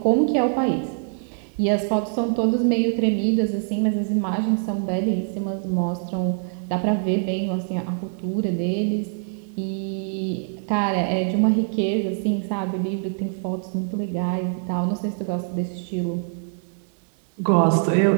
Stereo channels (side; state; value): left; silent; digital silence